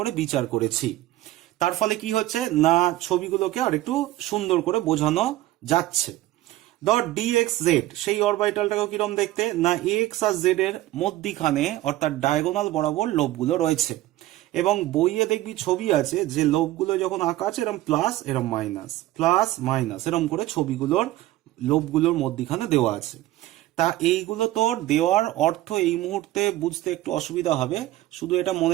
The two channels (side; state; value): left; quieter; 15.9 dB